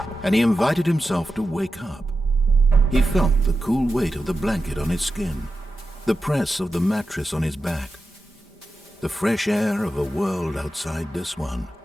and he invited himself to wake up. He felt the cool weight of the blanket on his skin, the press of the mattress on his back, the fresh air of a world outside this one.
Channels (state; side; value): normal; both; correlation 0.91